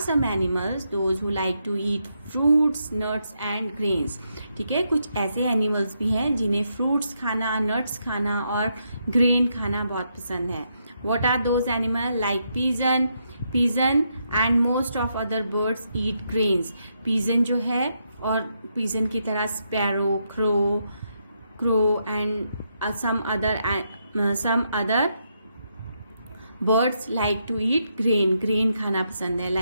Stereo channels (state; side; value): inverted; both; correlation -0.80